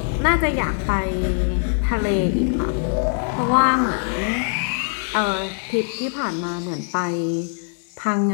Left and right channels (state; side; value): silent; right; digital silence